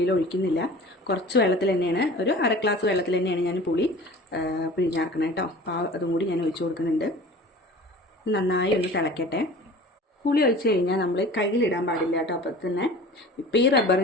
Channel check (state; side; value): normal; both; correlation 0.42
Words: ഒഴിക്കുന്നില്ല. കുറച്ച് വെള്ളത്തിൽ തന്നെയാണ്, ഒരു 1/2 ഗ്ലാസ് വെള്ളത്തിൽ തന്നെയാണ് ഞാൻ പുളി പിഴിഞ്ഞാർക്കണം കേട്ടോ. അപ്പോൾ അതും കൂടി ഞാൻ ഒഴിച്ചു കൊടുക്കുന്നുണ്ട്. നന്നായി ഒന്ന് തിളയ്ക്കട്ടെ. പുളി ഒഴിച്ച് കഴിഞ്ഞാൽ നമ്മൾ കയ്യിലിടാൻ പാടില്ല കേട്ടോ. അപ്പോൾ തന്നെ ഇപ്പോൾ ഈ